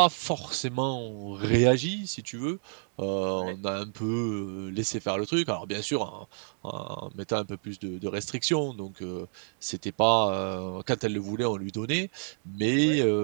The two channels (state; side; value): silent; left; digital silence